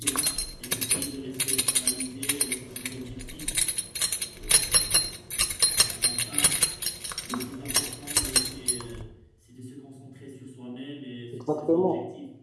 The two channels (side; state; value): both; identical; correlation 1.00